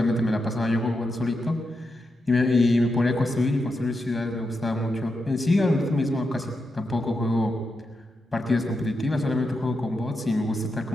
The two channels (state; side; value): normal; both; correlation 0.86